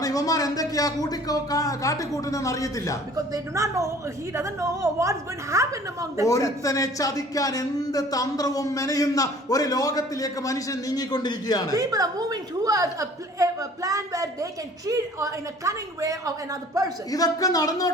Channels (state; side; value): normal; both; correlation 0.51